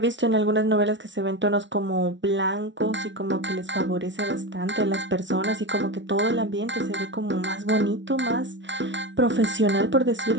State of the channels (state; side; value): late; left; 0.54 ms